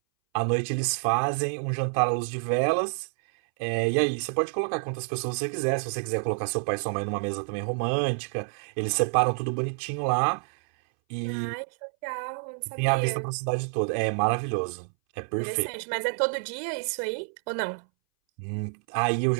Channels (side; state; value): left; silent; 59 dB below the other